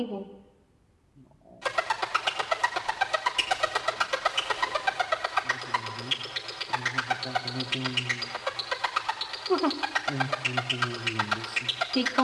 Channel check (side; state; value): both; identical; correlation 1.00